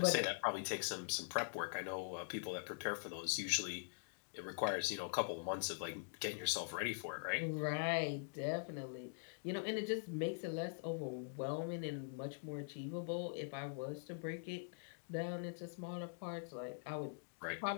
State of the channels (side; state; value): right; silent; digital silence